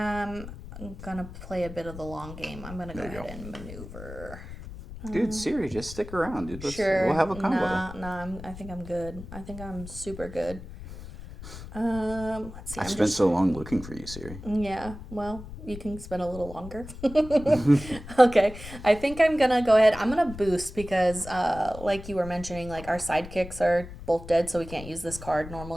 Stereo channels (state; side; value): noise; left; rumble, 13 dB below the sound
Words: gonna play a bit of the long game. I'm gonna go ahead and maneuver. Dude, Ciri, just stick around, dude. Sure. We'll have a combo. I think I'm good. I think I'm super good. Let's see. I spent so long looking for you, Ciri. Yeah, well, you can spend a little longer. Okay, I think I'm gonna go ahead. I'm gonna boost because, like you were mentioning, like our sidekicks are both dead, so we can't use this card